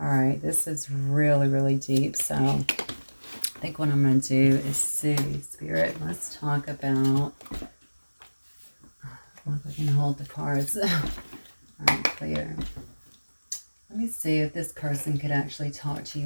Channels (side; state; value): both; inverted; correlation -1.00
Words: right, this is really, really deep. So I think what I'm going to do is see, Spirit, let's talk about, if I can hold the cards. All right, clear. Let me see if this person could actually talk to